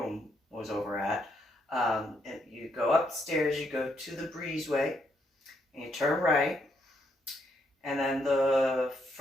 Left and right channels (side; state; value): both; normal; correlation 0.75